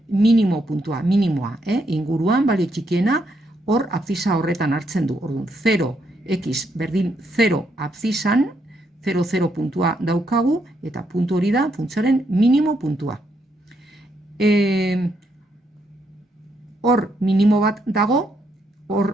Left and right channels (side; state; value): both; normal; correlation 0.77